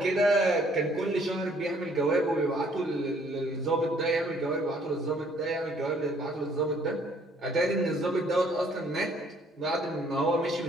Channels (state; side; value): normal; both; correlation 0.62